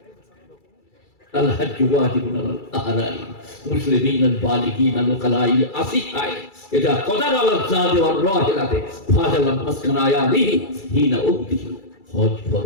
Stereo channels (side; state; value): right; late; 2.3 ms